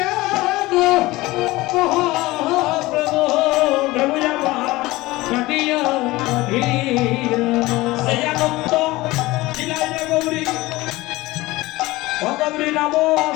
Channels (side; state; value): right; quieter; 19.6 dB